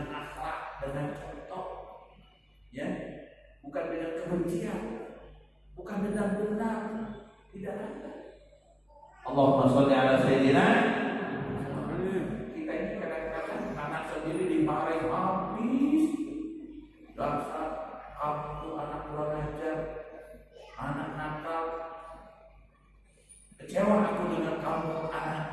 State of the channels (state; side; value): identical; both; correlation 1.00